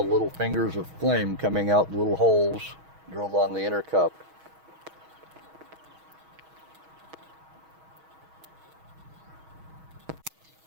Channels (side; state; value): left; late; 6.3 ms